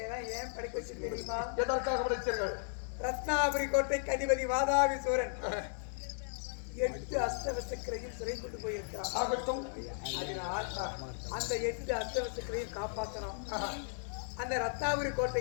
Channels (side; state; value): right; silent; digital silence